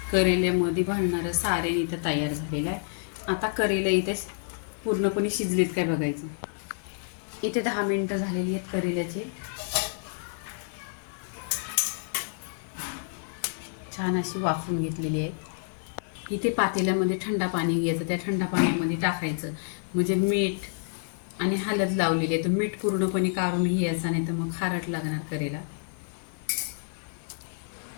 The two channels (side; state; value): right; silent; 59 dB below the other